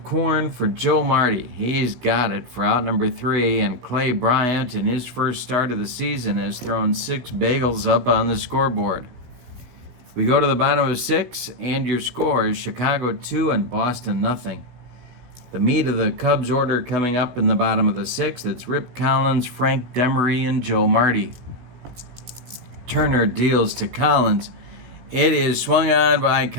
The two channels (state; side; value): late; left; 17 ms